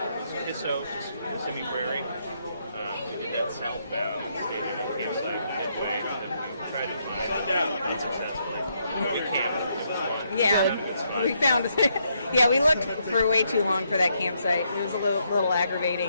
Kissimmee Prairie. We did that southbound and stayed in a campsite midway. And then we tried to find unsuccessfully. We camped. It was fun. Yeah, we found. Yeah, we looked for way too long for that campsite. It was a little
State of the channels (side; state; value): both; inverted; correlation -0.76